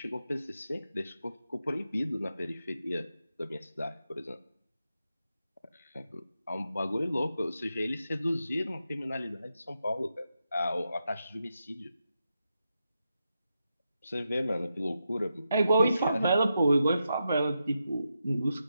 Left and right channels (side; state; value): both; inverted; correlation -0.87